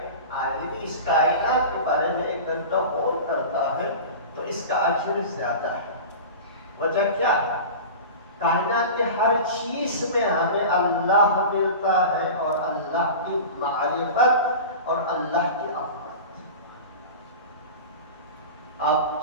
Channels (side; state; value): both; inverted; correlation -0.32